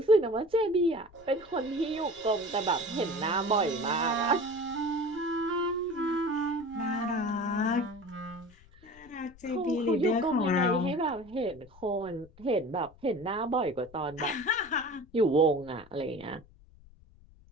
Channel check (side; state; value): left; noise; rumble, 24 dB below the sound